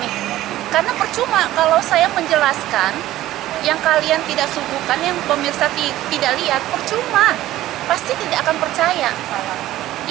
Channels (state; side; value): quieter; left; 14.8 dB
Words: nih. Karena percuma kalau saya menjelaskan yang kalian tidak suguhkan, yang pemirsa tidak lihat, percuma, pasti tidak akan percaya,